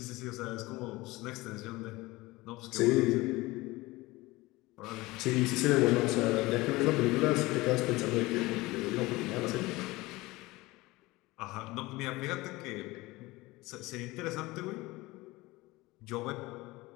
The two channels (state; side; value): quieter; right; 20.7 dB